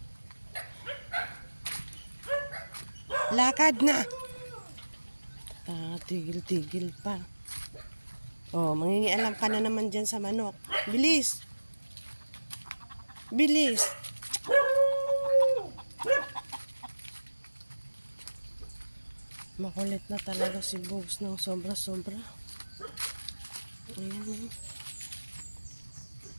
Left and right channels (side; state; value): both; inverted; correlation -1.00